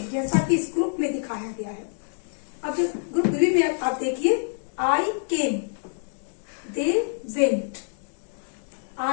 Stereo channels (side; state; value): right; silent; digital silence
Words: जैसा कि इस ग्रुप में दिखाया गया है। अब जो ग्रुप बी में आप देखिए, I came, they went.